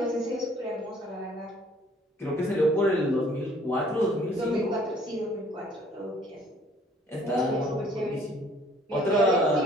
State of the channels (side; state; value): both; normal; correlation 0.57